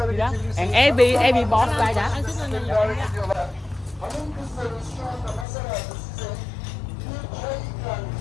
geçebilirsiniz. And every boss like that. Hanım kızlarımız şu anda masalarda size çay ikram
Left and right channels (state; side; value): drops out; right; at 5.5 s